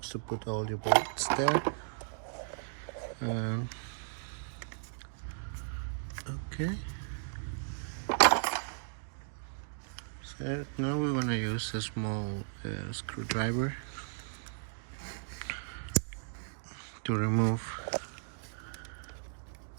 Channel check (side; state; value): left; silent; digital silence